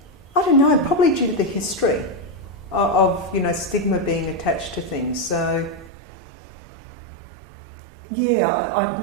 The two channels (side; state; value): left; drops out; at 5.9 s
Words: I don't know, probably due to the history of stigma being attached to things. So, yeah,